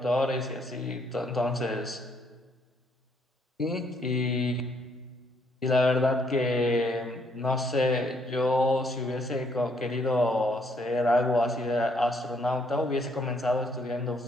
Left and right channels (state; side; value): normal; both; correlation 0.69